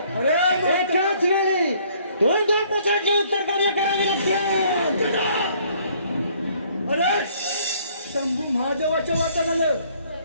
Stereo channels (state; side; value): inverted; both; correlation -0.62